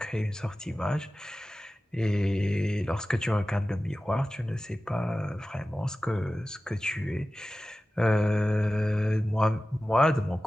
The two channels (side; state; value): both; normal; correlation 0.95